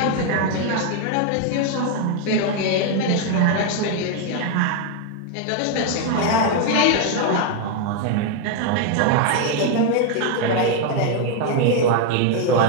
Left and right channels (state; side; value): different; both; correlation 0.01